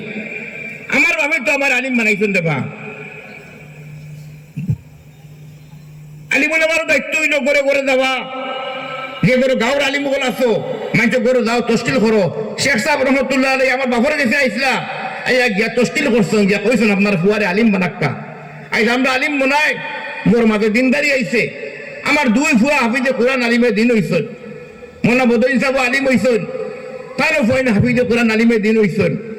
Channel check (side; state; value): both; identical; correlation 1.00